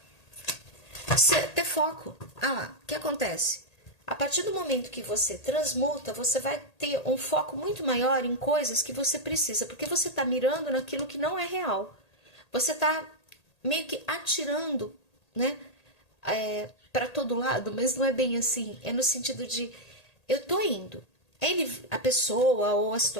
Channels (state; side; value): late; right; 1.8 ms